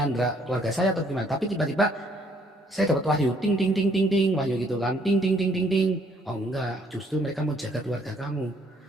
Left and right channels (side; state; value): both; normal; correlation 0.65